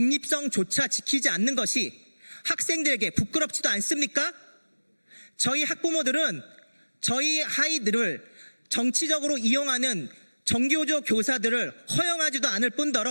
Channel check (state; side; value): inverted; both; correlation -1.00